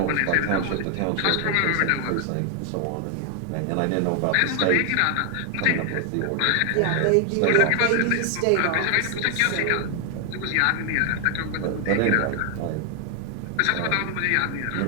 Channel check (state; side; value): different; both; correlation 0.00